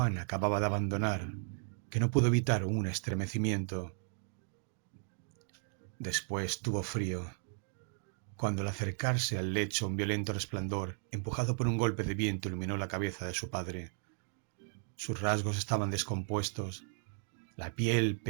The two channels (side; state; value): left; silent; 54 dB below the other